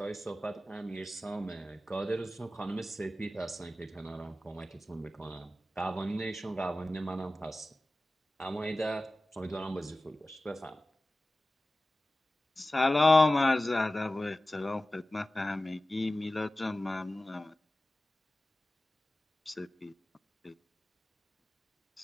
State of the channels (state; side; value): normal; both; correlation 0.96